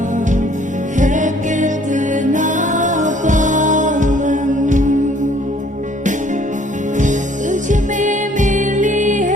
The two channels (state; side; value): normal; both; correlation 0.59